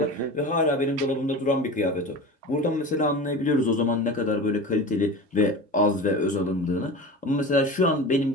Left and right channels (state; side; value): normal; both; correlation 0.31